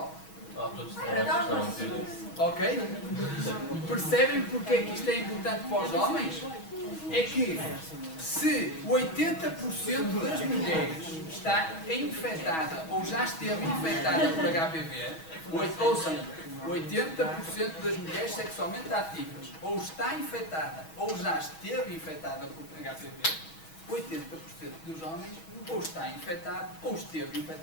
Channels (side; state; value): right; late; 6.2 ms